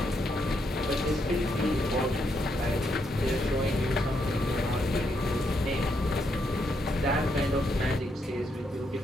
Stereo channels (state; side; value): normal; both; correlation 0.78